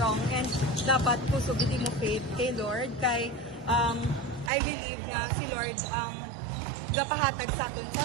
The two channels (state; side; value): drops out; left; at 4.5 s